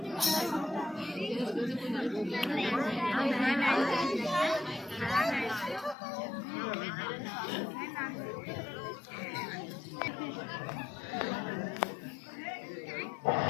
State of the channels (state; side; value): drops out; right; at 6.0 s